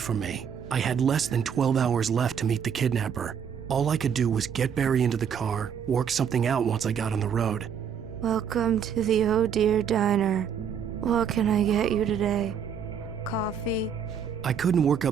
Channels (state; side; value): quieter; left; 7.6 dB